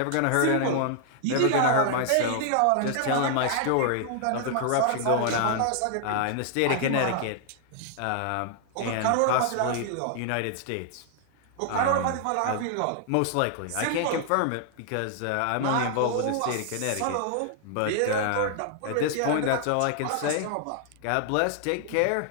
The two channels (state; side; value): different; both; correlation 0.00